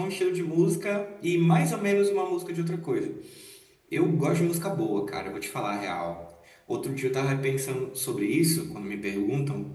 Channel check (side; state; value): both; identical; correlation 1.00